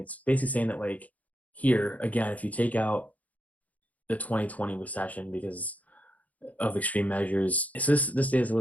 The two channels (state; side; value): late; right; 0.073 ms